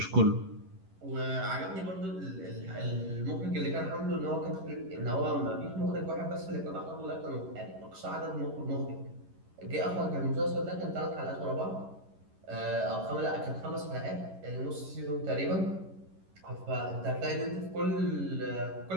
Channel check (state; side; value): late; left; 11 ms